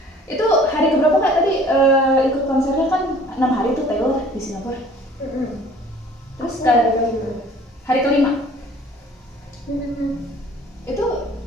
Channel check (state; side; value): normal; both; correlation 0.51